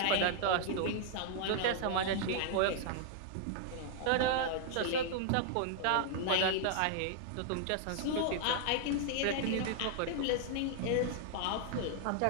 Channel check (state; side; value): different; both; correlation 0.00